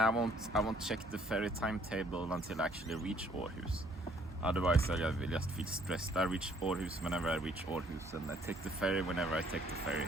won't check the ferry timetable until I actually reach Århus. Otherwise, I will just feel stressed. I reach Århus whenever I reach Århus, and I take the ferry whenever I take the ferry.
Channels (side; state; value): both; normal; correlation 0.63